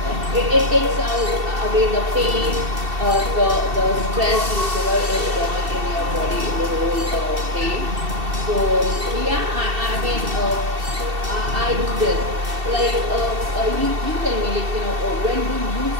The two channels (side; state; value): left; late; 2.7 ms